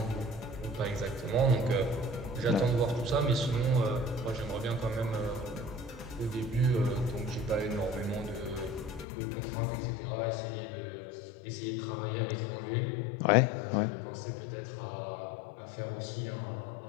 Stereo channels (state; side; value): drops out; right; at 9.1 s